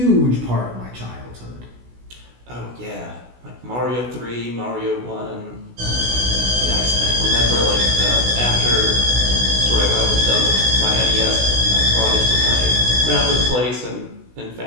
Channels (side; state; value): left; late; 16 ms